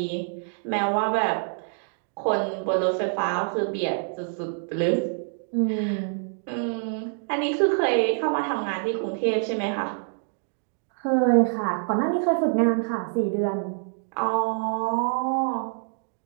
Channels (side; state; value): left; silent; digital silence